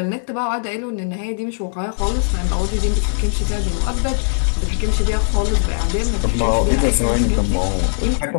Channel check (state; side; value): silent; right; digital silence